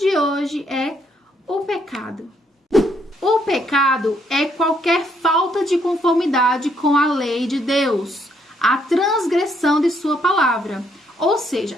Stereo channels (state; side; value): normal; both; correlation 0.72